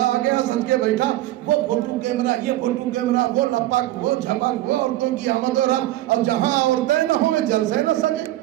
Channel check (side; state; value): left; quieter; 15.6 dB